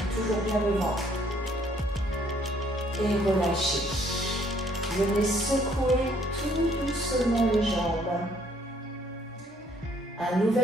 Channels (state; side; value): normal; both; correlation 0.65